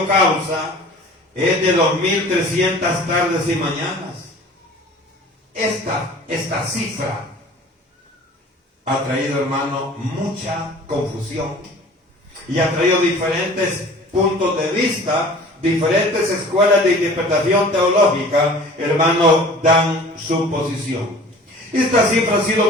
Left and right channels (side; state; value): both; normal; correlation 0.45